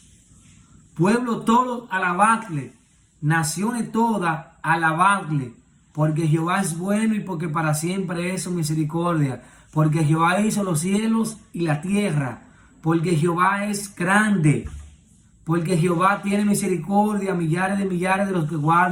Pueblo todo, alabadle. Naciones todas, alabadle. Porque Jehová es bueno y porque para siempre es su misericordia. Porque Jehová hizo los cielos y la tierra. Porque Jehová es grande. Porque Jehová tiene misericordia a millares de los que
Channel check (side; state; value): both; identical; correlation 1.00